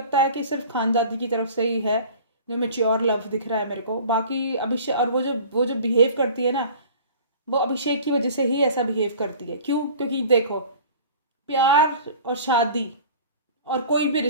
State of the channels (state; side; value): inverted; both; correlation -0.43